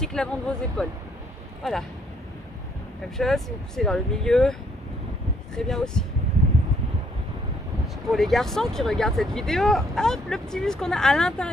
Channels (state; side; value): normal; both; correlation 0.68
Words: que l'avant de vos épaules. Voilà. Même chose, si vous poussez vers le milieu, très bien aussi. Pour les garçons qui regardent cette vidéo, hop, le petit muscle qu'on a à